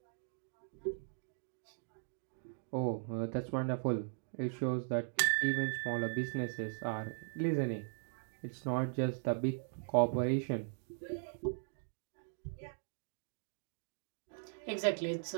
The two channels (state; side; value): silent; left; digital silence